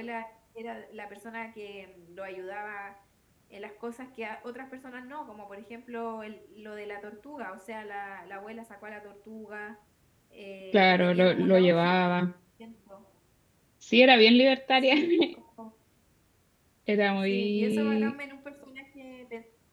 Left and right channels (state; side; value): identical; both; correlation 1.00